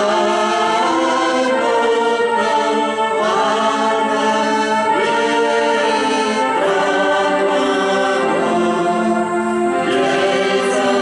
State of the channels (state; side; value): identical; both; correlation 1.00